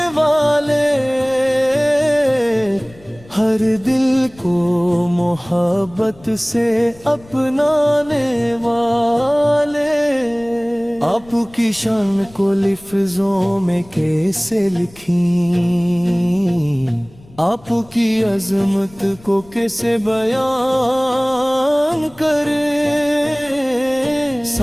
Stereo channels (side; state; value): left; noise; rumble, 25 dB below the sound